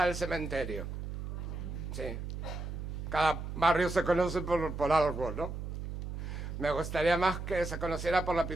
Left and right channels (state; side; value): noise; right; hum, 6 dB below the sound